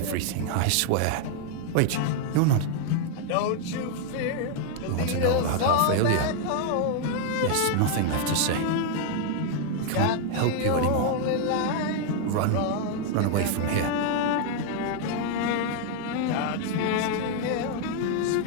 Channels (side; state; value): both; different; correlation 0.00